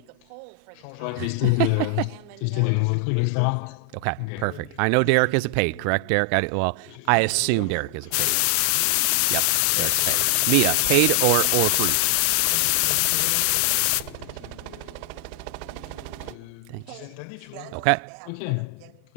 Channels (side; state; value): both; different; correlation 0.00